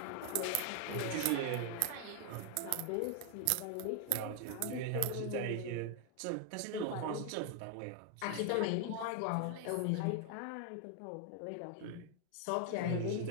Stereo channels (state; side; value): different; both; correlation 0.00